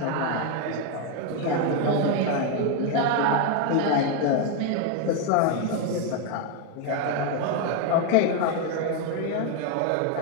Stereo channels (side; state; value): both; different; correlation 0.01